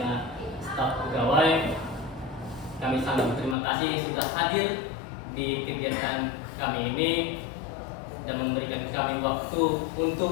staf pegawai, kami sangat berterima kasih sudah hadir di kegiatan kami ini dan memberikan kami waktu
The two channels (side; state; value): right; drops out; at 3.6 s